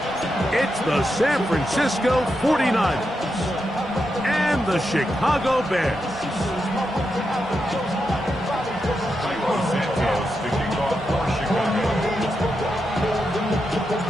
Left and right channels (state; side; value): normal; both; correlation 0.86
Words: It's the San Francisco 49ers and the Chicago Bears.